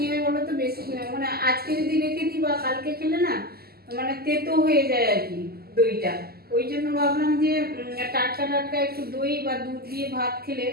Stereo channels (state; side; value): late; left; 0.45 ms